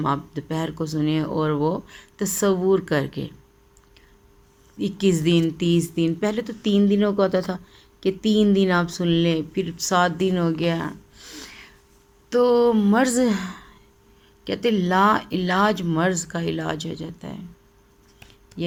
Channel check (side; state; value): both; identical; correlation 1.00